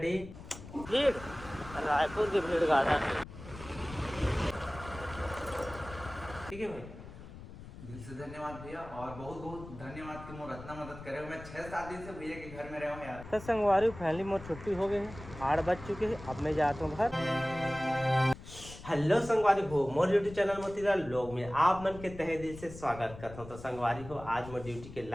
डे भीड़ रायपुर के भीड़ गार्डन। ठीक है भाई, दिल से धन्यवाद भैया और बहुत बहुत धन्यवाद कि मोर इतना मदद करे। मैं 6-7 दिन से भैया के घर में रहा हूँ यार। तो संगवारी फैमिली मोर छुट्टी हो गई है, 8 बज चुके हैं, अब मैं जाता हूँ घर। हेलो संगवारी हो, मोर यूट्यूब चैनल मोतीलाल लोग में आप मन के तहे दिल से स्वागत करता हूँ। तो संगवारी हो, आज मोर ड्यूटी के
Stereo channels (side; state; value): left; noise; rumble, 14 dB below the sound